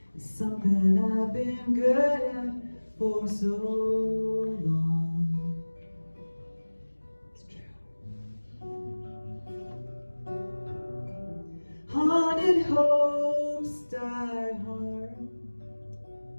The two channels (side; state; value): both; inverted; correlation -1.00